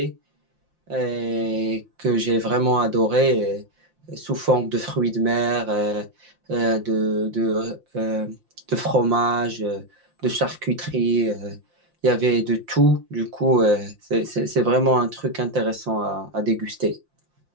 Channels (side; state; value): left; late; 5.7 ms